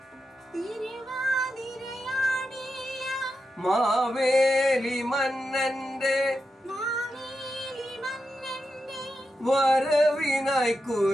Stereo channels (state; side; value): normal; both; correlation 0.88